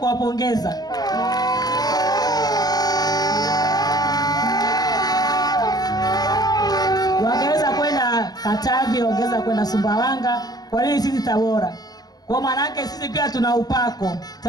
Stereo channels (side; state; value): right; late; 0.19 ms